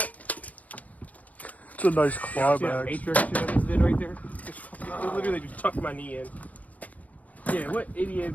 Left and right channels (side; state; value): right; late; 0.071 ms